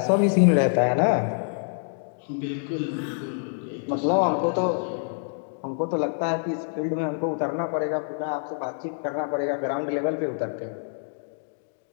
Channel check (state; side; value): silent; right; digital silence